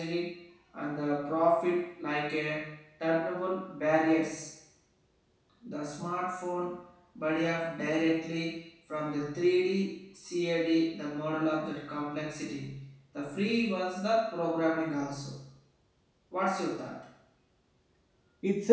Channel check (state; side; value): identical; both; correlation 1.00